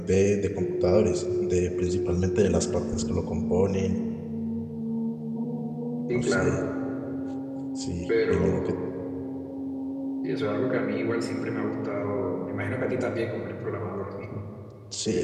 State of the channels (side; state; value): both; identical; correlation 1.00